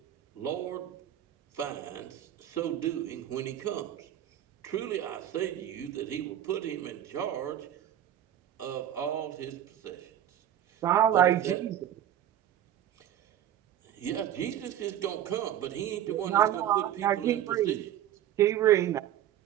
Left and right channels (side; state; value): left; quieter; 11.2 dB